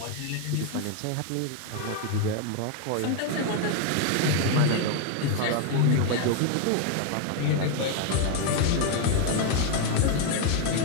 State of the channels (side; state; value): both; different; correlation 0.00